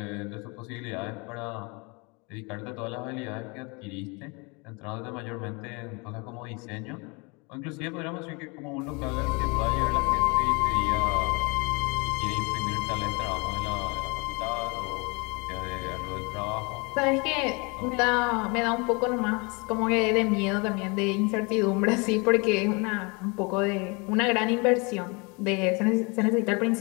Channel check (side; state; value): right; quieter; 29.9 dB